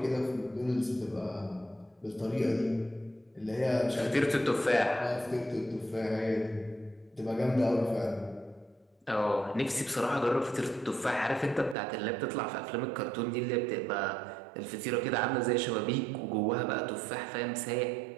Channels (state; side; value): drops out; left; at 11.8 s